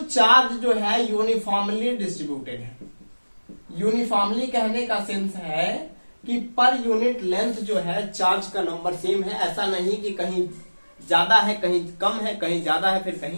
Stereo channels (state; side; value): inverted; both; correlation -1.00